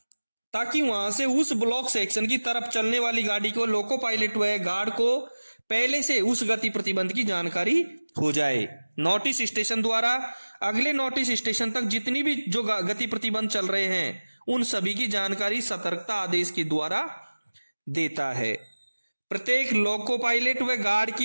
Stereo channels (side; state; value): both; inverted; correlation -1.00